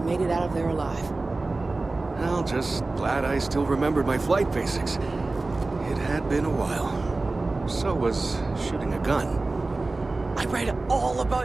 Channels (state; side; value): quieter; left; 3.3 dB